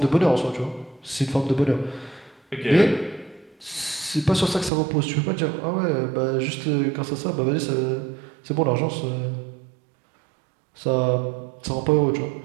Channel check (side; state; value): left; drops out; at 4.7 s